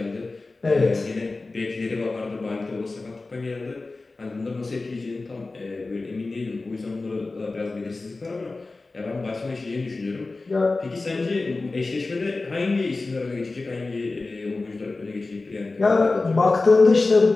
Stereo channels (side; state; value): right; quieter; 3.5 dB